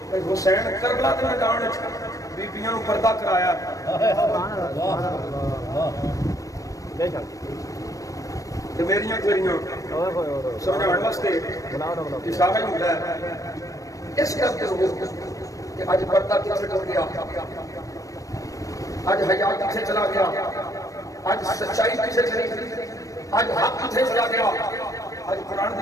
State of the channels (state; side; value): late; right; 0.16 ms